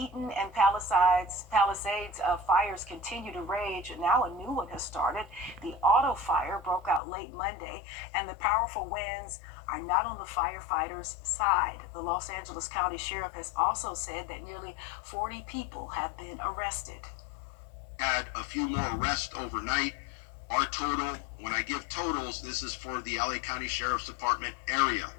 and Palisades fires continue to rage. Now a new one has started. The auto fire broke out late Monday, and the powerful winds are not on the firefighters' side. The Los Angeles County Sheriff has also said that nearly 40 people have been arrested. Had a few more arrests overnight. Our total, when I give totals, this is for the LA County Sheriff's Department area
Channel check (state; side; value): drops out; right; at 7.0 s